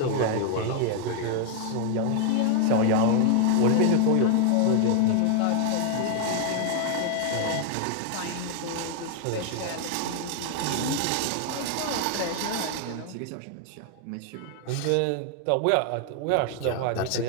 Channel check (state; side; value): different; both; correlation 0.00